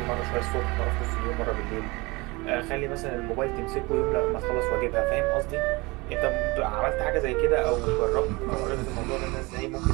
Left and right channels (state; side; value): quieter; left; 24.6 dB